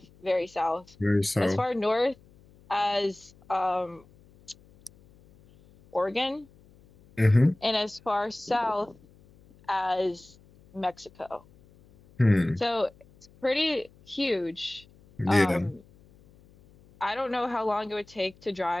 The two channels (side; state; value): left; noise; hum, 27 dB below the sound